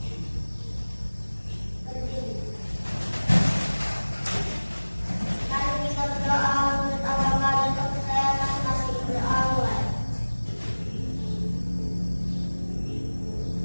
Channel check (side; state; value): both; inverted; correlation -1.00